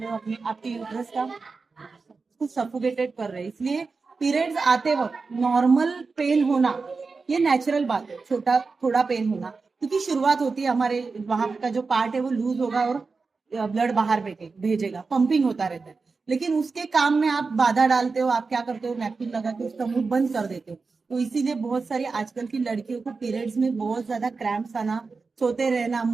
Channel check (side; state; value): left; quieter; 4.4 dB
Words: हो, अपने आपके यूट्रस का कुछ सफोकेटेड कर रहे हैं। इसलिए पीरियड्स आते वक्त नॉर्मल पेन होना ये नेचुरल बात है, छोटा थोड़ा पेन होना, क्योंकि शुरुआत होती है, हमारे वहां का जो पार्ट है वो लूज होगा और ब्लड बाहर भेजेगा, पंपिंग होता रहता है। लेकिन उसके काम में आप बाधा डालते हो, आप क्या करते हो, नैपकिन लगा के उसका मुंह बंद कर देते हो। तो इसीलिए बहुत सारी आजकल की लड़कियों को पीरियड्स में बहुत ज्यादा क्रैम्प्स आना, सोते रहना,